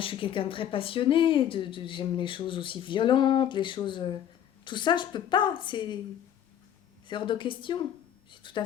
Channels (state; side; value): quieter; right; 10.1 dB